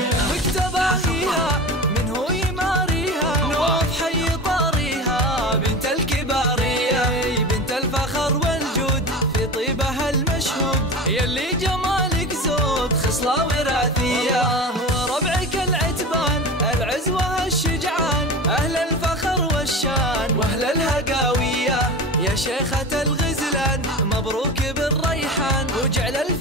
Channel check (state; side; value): normal; both; correlation 0.30